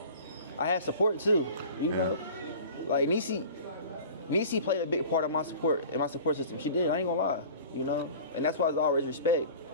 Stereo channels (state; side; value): inverted; both; correlation -0.41